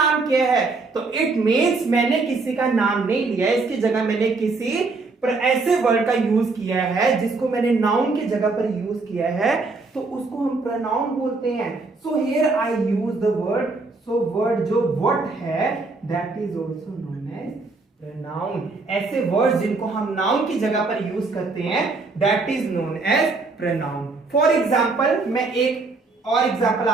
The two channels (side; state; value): left; quieter; 3.8 dB